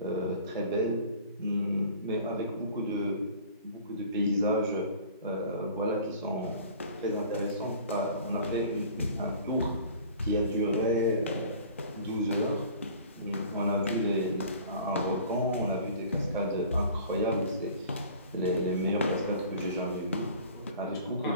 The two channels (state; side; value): inverted; both; correlation -0.46